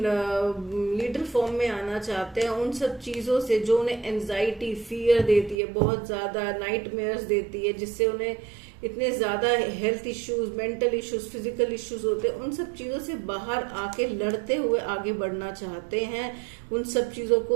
लीडर फॉर्म में आना चाहते हैं। उन सब चीजों से जो उन्हें एंजाइटी, फियर देती है, बहुत ज्यादा नाइटमेयर्स देती है, जिससे उन्हें इतने ज्यादा health issues, mental issues, physical issues होते हैं, उन सब चीजों से बाहर आके लड़ते हुए आगे बढ़ना चाहते हैं। उन सब चीजों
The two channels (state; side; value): drops out; left; at 5.6 s